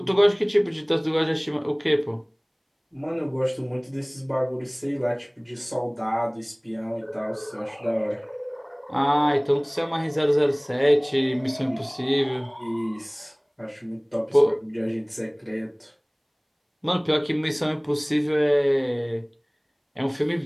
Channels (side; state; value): both; identical; correlation 1.00